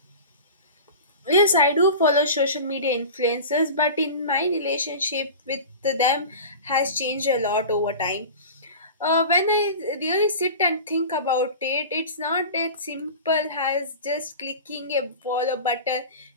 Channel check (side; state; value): both; inverted; correlation -0.34